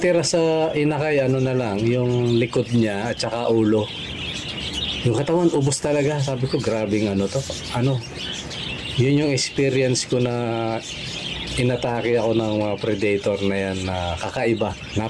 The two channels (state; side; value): identical; both; correlation 1.00